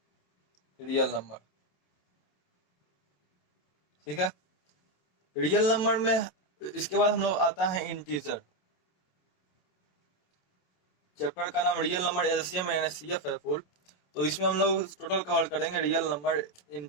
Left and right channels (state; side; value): late; right; 27 ms